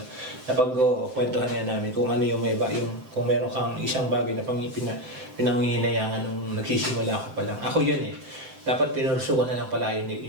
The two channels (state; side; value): late; left; 7.7 ms